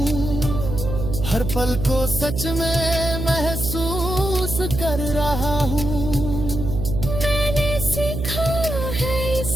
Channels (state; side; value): noise; right; hum, 4 dB below the sound